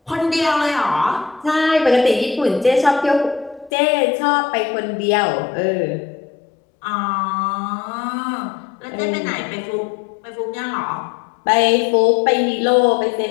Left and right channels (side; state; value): right; drops out; at 3.7 s